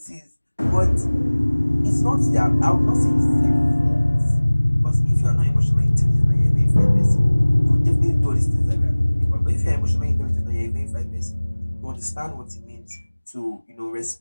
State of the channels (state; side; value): inverted; both; correlation -1.00